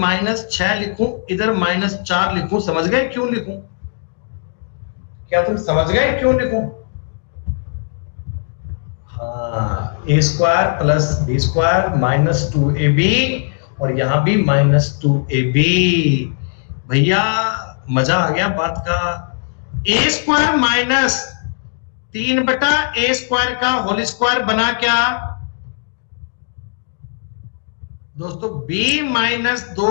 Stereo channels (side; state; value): right; silent; digital silence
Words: लिखूं, इधर -4 लिखूं। समझ गए क्यों लिखूं? क्या तुम समझ गए क्यों लिखूं? हाँ, a square plus b square minus 2ab और यहां भी -2ab। भैया मजा आ गया बात का। a स्क्वायर माइनस 3 बटा a स्क्वायर का होल स्क्वायर बना क्या दोस्तों? b माइनस